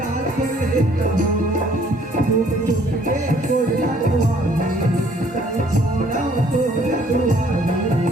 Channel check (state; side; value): normal; both; correlation 0.61